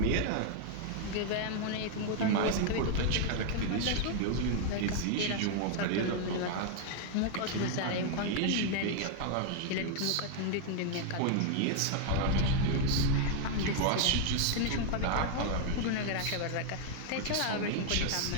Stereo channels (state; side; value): different; both; correlation 0.00